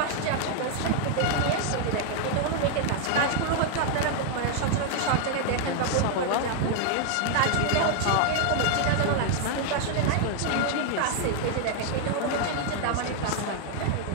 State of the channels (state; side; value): different; both; correlation 0.00